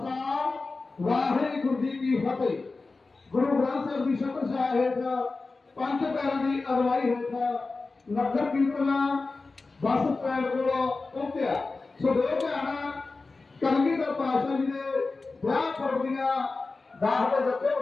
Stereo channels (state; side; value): quieter; right; 3.8 dB